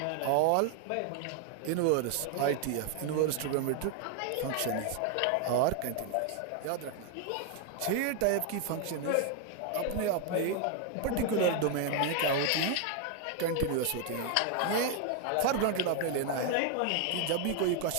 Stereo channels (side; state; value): both; different; correlation 0.00